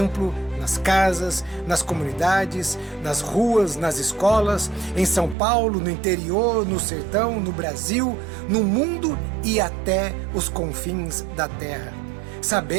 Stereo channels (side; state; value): left; drops out; at 5.4 s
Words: nas casas, nas comunidades, nas ruas, nas escolas, em São Paulo, no interior, no sertão, no Brasil, no mundo e até os confins da terra.